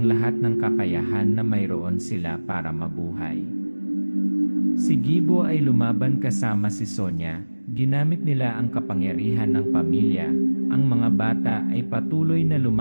lahat ng kakayahan na mayroon sila para mabuhay. Si Gibo ay lumaban kasama si Sonya, ginamit nila ang kapangyarihan ng pamilya, ang mga bata ay patuloy na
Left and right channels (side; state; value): both; inverted; correlation -1.00